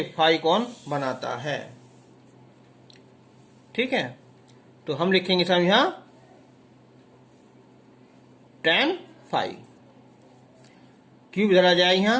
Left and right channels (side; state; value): both; identical; correlation 1.00